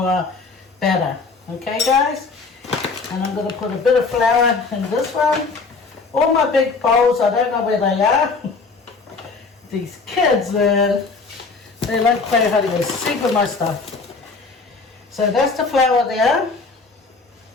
batter. Okay, guys? And I'm going to put a bit of flour in this one. All my big bowls, I don't know where they are. These kids, man, they like playing hard with super my stuff. So that's the flour there.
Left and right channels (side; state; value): right; quieter; 4.3 dB